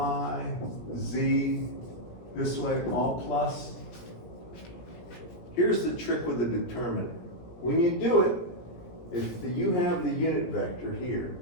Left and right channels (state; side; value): late; right; 17 ms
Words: z, this way, all plus? Here's the trick with the determinant. When you do it, if you have the unit vector here,